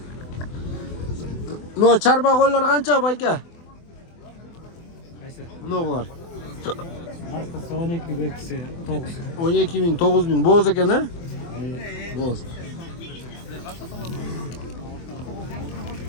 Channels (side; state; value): right; late; 24 ms